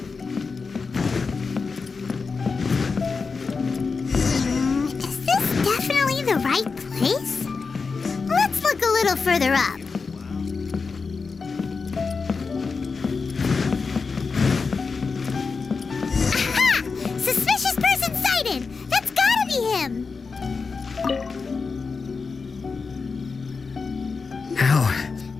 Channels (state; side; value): quieter; right; 4.7 dB